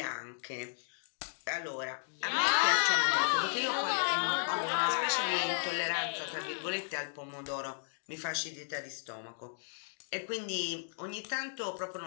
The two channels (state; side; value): silent; right; digital silence